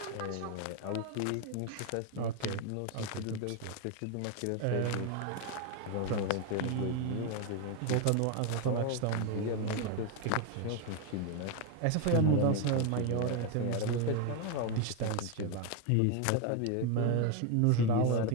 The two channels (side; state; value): both; different; correlation 0.01